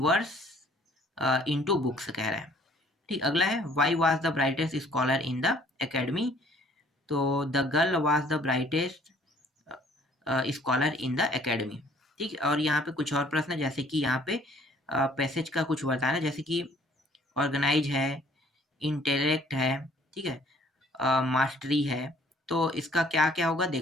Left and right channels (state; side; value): normal; both; correlation 0.58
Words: into books कह रहा है, ठीक। अगला है why was the brightest scholar in the academy, तो the girl was the brightest scholar in the academy, ठीक। और यहाँ पे कुछ और प्रश्न, जैसे कि यहाँ पे पैसेज का कुछ बताना, जैसे कि ऑर्गेनाइज है, इंटेलेक्ट है, ठीक है, मास्टरी है, तो इसका क्या क्या होगा,